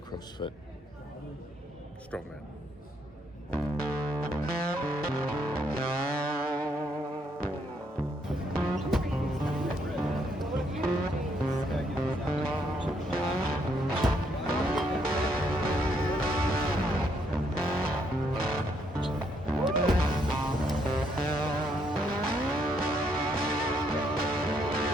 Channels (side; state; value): both; normal; correlation 0.72